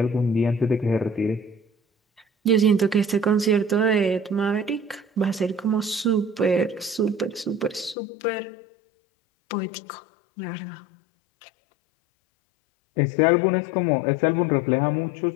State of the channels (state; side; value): drops out; right; at 8.0 s